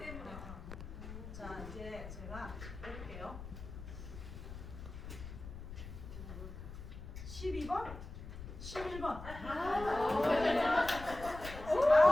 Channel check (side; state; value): left; noise; rumble, 11 dB below the sound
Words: 자, 이제 제가 해볼게요. 12번? 11번.